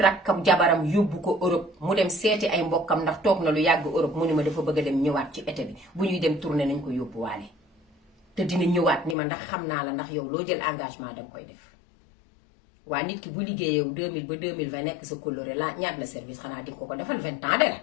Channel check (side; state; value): right; drops out; at 9.2 s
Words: jabaram yóbbu ko Europe mu dem seeti ay mbokkam ndax toog na lu yàgg Europe. mu ni ma dafa bëgg a dem ñëwaat ci été bi, bu ñuy dem tournée nañ ko yóbbuwaale te dina ñëwaat ni ma ndax xam naa la, ndax yow loo jël engagement danga koy def. waa nit ki bu liggéeyee 2000 ba 2020 nekk sa coloré la ñaat la service, xanaa di ko ko defal 20 ans de la